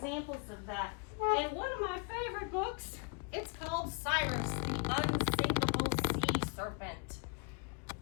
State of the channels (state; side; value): quieter; right; 35.9 dB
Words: of that. In one of my favorite books, it's called Cyrus, the Unsinkable Sea Serpent.